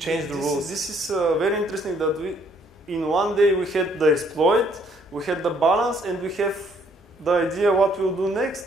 the rules. This is very interesting that in one day we had the exploit, we had the balance, and we have the idea what we'll do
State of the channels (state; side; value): normal; both; correlation 0.65